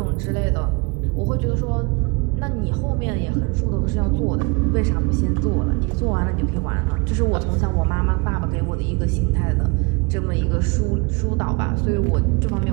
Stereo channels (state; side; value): quieter; left; 28.1 dB